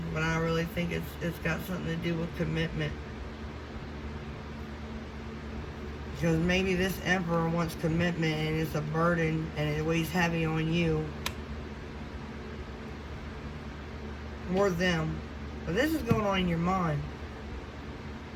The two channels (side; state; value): both; identical; correlation 1.00